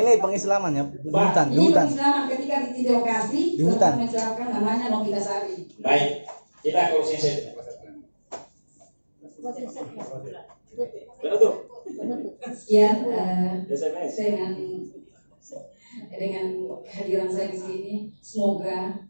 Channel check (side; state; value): both; inverted; correlation -1.00